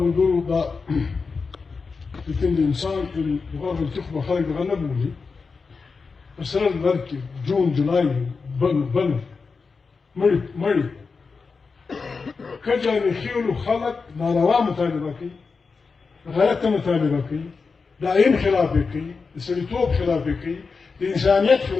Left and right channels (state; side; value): quieter; right; 4.7 dB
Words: دا لكن الإنسان في بغاف التخبة خارج غنبولي السنة المركي جون جولاي بنو مري كجاني خيولو خلق ناروا مطالبة كي غلطة مطالبة كي دائم خلافه كي السلطوب خلافه كي الإنسانيت